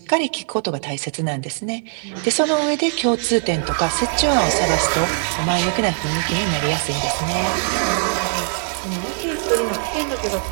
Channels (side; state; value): left; silent; 59 dB below the other